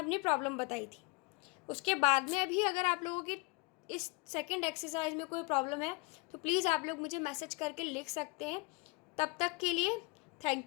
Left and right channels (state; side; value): quieter; right; 27.0 dB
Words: प्रॉब्लम बताई थी। उसके बाद में अभी अगर आप लोगों की इस सेकंड एक्सरसाइज में कोई प्रॉब्लम है तो प्लीज़ आप लोग मुझे मैसेज करके लिख सकते हैं। तब तक के लिए